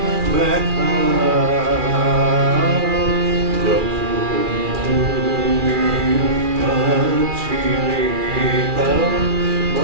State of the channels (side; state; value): left; late; 2.4 ms